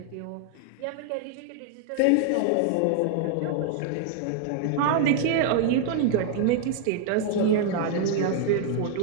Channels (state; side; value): different; both; correlation 0.00